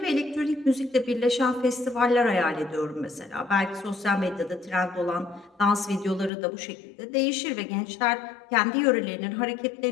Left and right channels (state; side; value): drops out; right; at 6.3 s